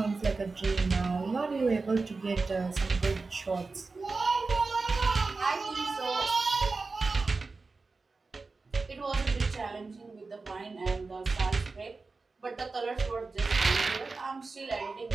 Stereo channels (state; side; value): quieter; left; 4.0 dB